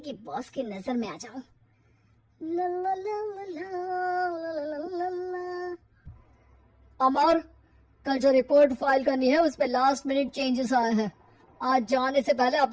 बॉस की नजर में आ जाऊं। अमर, कल जो रिपोर्ट फाइल करनी है उस पे लास्ट मिनट चेंजेस आए हैं, आज जाने से पहले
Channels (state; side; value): identical; both; correlation 1.00